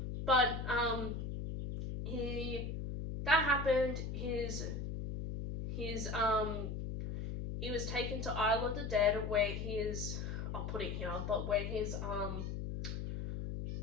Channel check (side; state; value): left; noise; hum, 4 dB below the sound